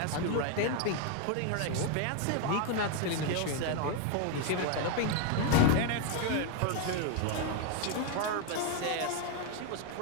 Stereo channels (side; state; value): both; different; correlation 0.00